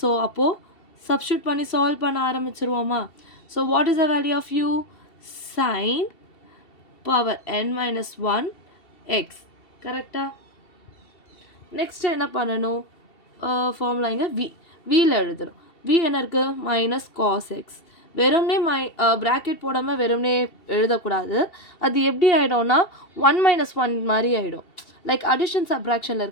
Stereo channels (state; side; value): late; right; 2.7 ms